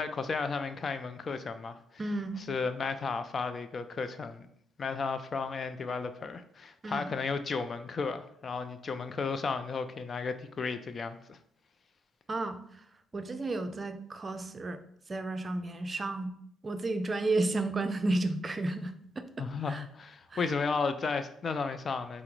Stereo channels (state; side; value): normal; both; correlation 0.83